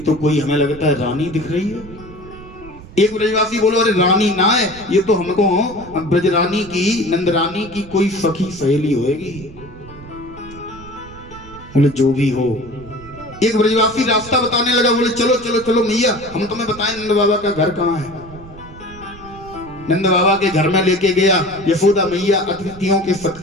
कोई हमें लगता है रानी दिख रही है। एक ब्रजवासी बोलो अरे रानी ना है, ये तो हमको ब्रजरानी की, नंदरानी की कोई सखी सहेली होएगी। बोले जो भी हो। एक ब्रजवासी रास्ता बताने लगा, बोले चलो चलो चलो मैया, हम तुम्हें बताएं नंद बाबा का घर कहाँ है। नंद बाबा के घर में लेके गया। यशोदा मैया अतिथियों के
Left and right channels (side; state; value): right; noise; rumble, 18 dB below the sound